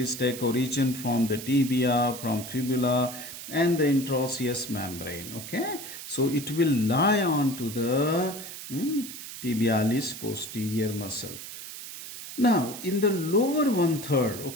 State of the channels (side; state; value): right; noise; hiss, 11 dB below the sound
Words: take origin from the tibia, from fibula, and the interosseous membrane. Okay, so it will lie on to the tibialis posterior muscle. Now, in the lower one third,